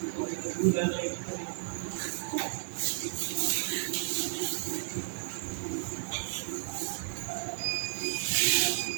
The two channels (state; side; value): silent; left; digital silence